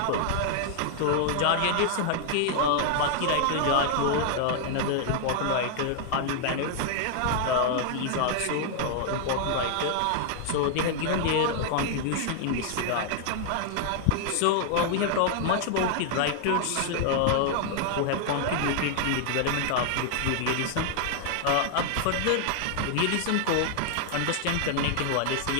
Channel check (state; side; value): different; both; correlation 0.00